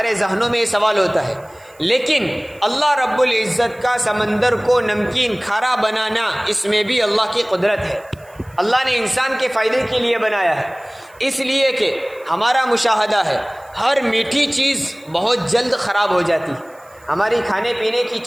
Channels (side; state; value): right; noise; hiss, 29 dB below the sound